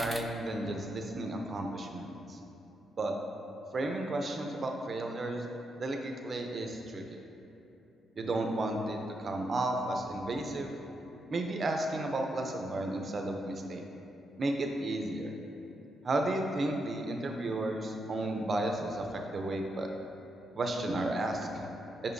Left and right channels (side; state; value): both; normal; correlation 0.82